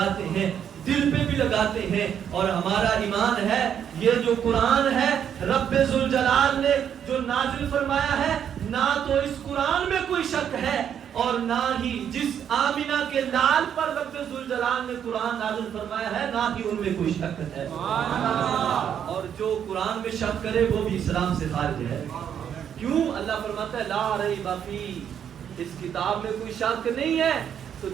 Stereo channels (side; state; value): left; quieter; 8.8 dB